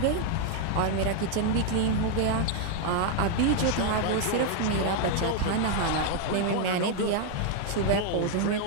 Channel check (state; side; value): different; both; correlation 0.00